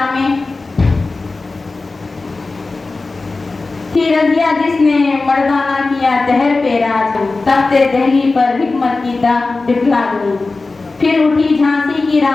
में। थी रजिया जिसने मर्दाना किया दहर पे राज। तख्ते दहली पर हिकमत की दाग दिखला गई। फिर उठी झांसी की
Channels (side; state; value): right; quieter; 3.6 dB